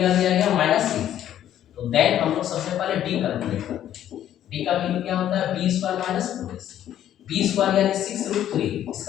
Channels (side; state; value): right; quieter; 11.3 dB